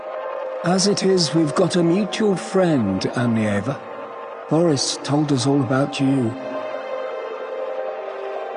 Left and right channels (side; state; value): both; identical; correlation 1.00